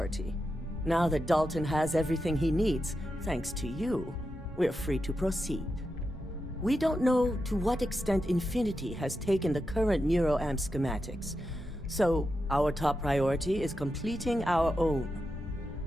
Now that Dalton has everything he needs, thanks to you, we're free to proceed. We don't know to what extent Infinity has taken the current neuroamp schematics, so our top priority is completing our own.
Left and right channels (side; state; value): both; normal; correlation 0.88